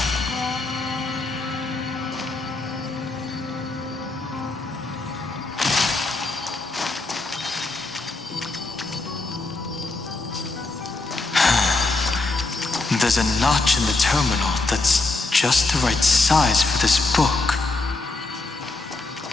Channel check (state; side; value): quieter; right; 3.3 dB